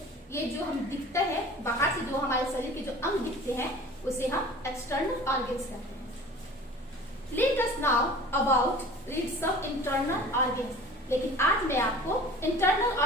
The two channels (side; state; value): both; normal; correlation 0.42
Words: ये जो हम दिखते हैं बाहर से, जो हमारे शरीर के जो अंग दिखते हैं उसे हम एक्सटर्नल ऑर्गेन्स कहते हैं। Let us now about read some internal organs. लेकिन आज मैं आपको इंटरनल